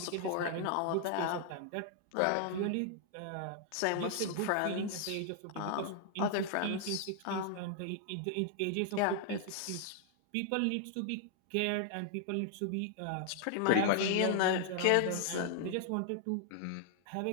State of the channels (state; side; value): different; both; correlation 0.00